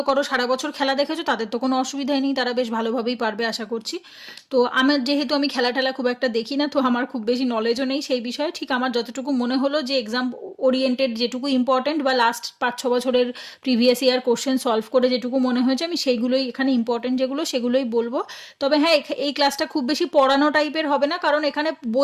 করো, সারা বছর খেলা দেখেছো, তাদের তো কোনো অসুবিধাই নেই, তারা বেশ ভালোভাবেই পারবে আশা করছি। তো আমার যেহেতু আমি খেলা টেলা খুব একটা দেখি না, তো আমার খুব বেশি নলেজও নেই সেই বিষয়ে। ঠিক আমার যতটুকু মনে হলো যে এক্সাম ওরিয়েন্টেড যেটুকু ইম্পর্টেন্ট, বা লাস্ট 5-6 বছরের প্রিভিয়াস ইয়ার কোশ্চেন সলভ করে যেটুকু মনে হয়েছে, আমি সেইগুলোই এখানে ইম্পর্টেন্ট যেগুলো সেগুলোই বলবো। তবে হ্যাঁ, এই ক্লাসটা খুব বেশি পড়ানো টাইপের হবে না, কারণ এখানে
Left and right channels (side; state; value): both; identical; correlation 1.00